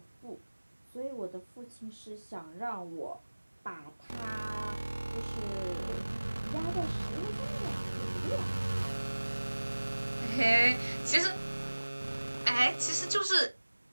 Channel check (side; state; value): both; inverted; correlation -1.00